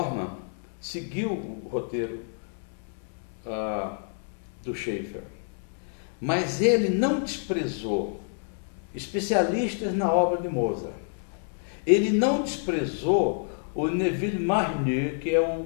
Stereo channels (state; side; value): silent; right; 59 dB below the other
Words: seguiu o roteiro do Schaefer, mas ele não desprezou especialistas na obra de Mozart. Ele não desprezou o Neville Marnier, que é